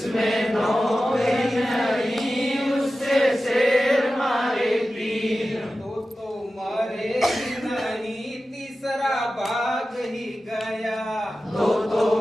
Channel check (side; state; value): both; normal; correlation 0.94